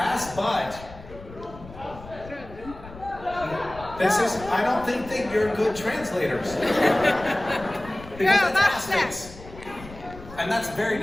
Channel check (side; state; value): left; noise; rumble, 17 dB below the sound